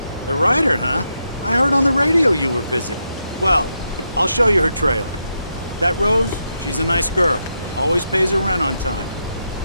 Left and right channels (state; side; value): inverted; both; correlation -0.83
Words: The writer, huh? I heard on the radio you were visiting. Well, I'll show you her trailer. That Rose, she's a nice girl. Always pays her rent on time.